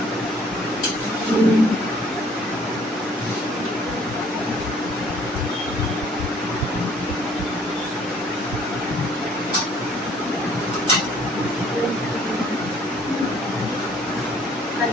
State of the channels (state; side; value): normal; both; correlation 0.59